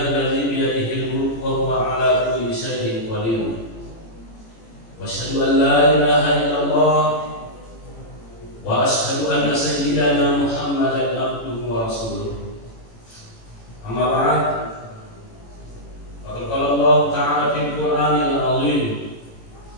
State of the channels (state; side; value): late; right; 18 ms